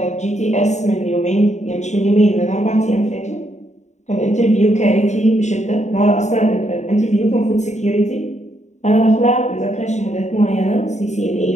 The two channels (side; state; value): right; late; 0.34 ms